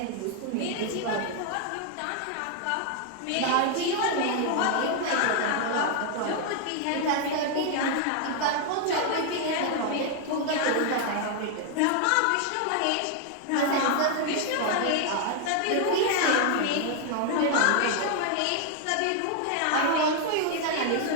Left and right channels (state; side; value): different; both; correlation 0.00